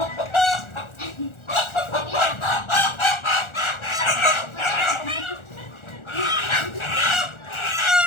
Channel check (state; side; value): late; right; 1.4 ms